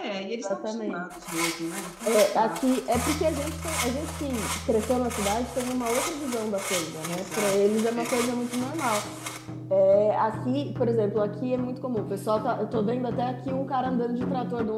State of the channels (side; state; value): both; identical; correlation 1.00